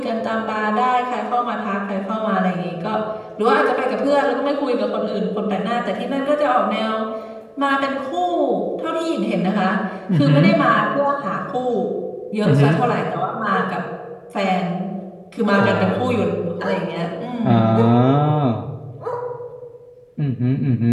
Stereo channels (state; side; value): identical; both; correlation 1.00